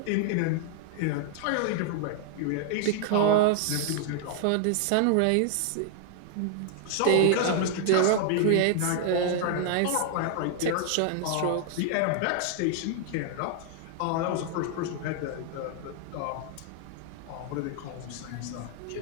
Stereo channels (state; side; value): different; both; correlation 0.00